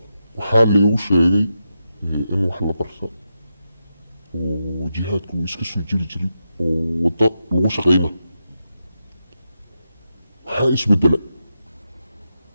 waxaa laygu sheegay in wax la barta oo jihaadku iska soo jiri jiray oo wadda lagu shaqayna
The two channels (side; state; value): both; inverted; correlation -0.87